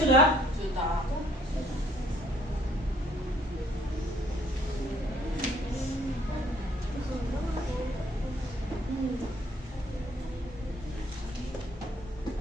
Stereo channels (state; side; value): normal; both; correlation 0.61